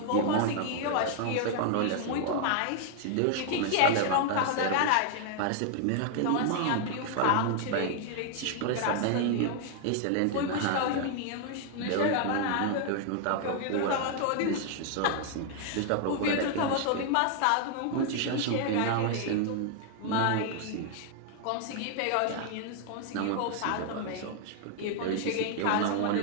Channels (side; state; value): both; different; correlation 0.00